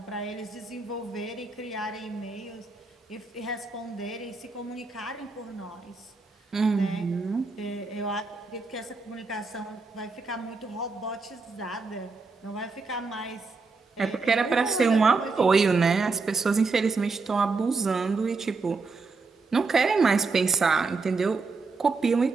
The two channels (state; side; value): quieter; left; 4.1 dB